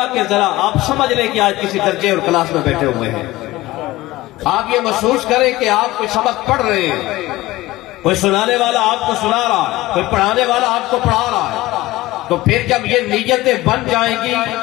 کہ ذرا آپ سمجھ لیں کہ آج کسی درجے اور کلاس میں بیٹھے ہوئے ہیں، آپ یہ محسوس کریں کہ آپ کوئی سبق پڑھ رہے ہیں، کوئی سنانے والا آپ کو سنا رہا ہے، کوئی پڑھانے والا آپ کو پڑھا رہا ہے، تو پھر جب یہ نیتیں بن جائیں گی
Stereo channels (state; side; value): quieter; right; 18.3 dB